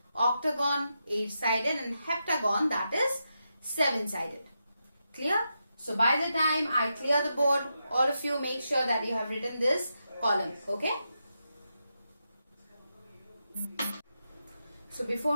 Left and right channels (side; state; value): both; inverted; correlation -0.86